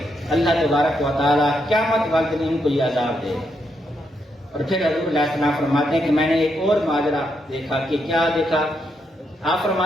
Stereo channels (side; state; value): both; normal; correlation 0.80